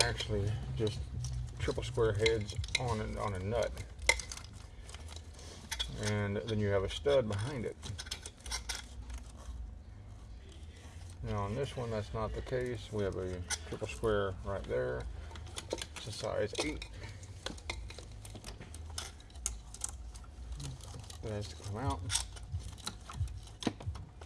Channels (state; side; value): identical; both; correlation 1.00